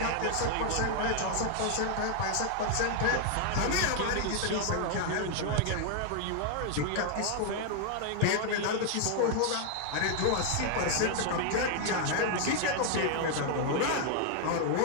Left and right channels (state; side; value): different; both; correlation 0.00